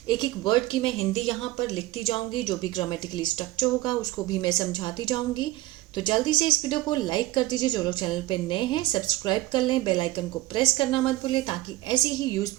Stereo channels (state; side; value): quieter; left; 17.2 dB